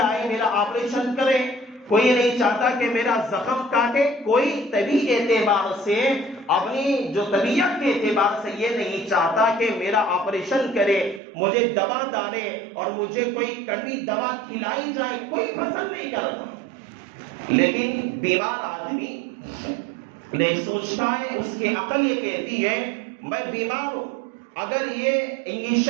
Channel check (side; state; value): left; drops out; at 11.2 s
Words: آئے میرا آپریشن کرے، کوئی نہیں چاہتا کہ میرا زخم کاٹے، کوئی طبی اعتبار سے، اپنی جو طبیعت کے اعتبار سے یہ نہیں چاہتا کہ میرا آپریشن کرے، مجھے دوا ڈالے اور مجھے کوئی کڑوی دوا کھلائی جائے، کوئی پسند نہیں کرتا۔ لیکن بیمار آدمی نہیں سوچتا ہے، اس کی عقل یہ کہتی ہے میں بیمار ہوں، اگر یہ